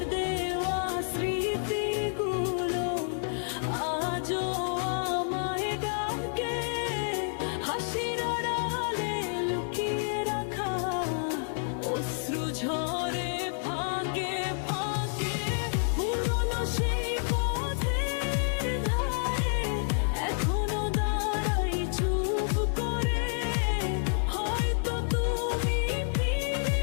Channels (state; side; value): silent; right; 58 dB below the other